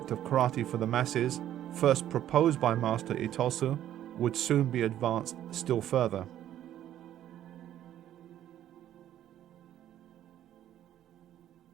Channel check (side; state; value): left; quieter; 11.7 dB